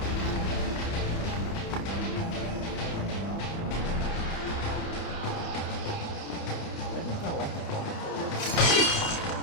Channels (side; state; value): right; late; 30 ms